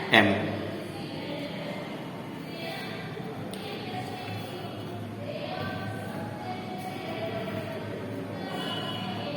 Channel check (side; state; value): both; identical; correlation 1.00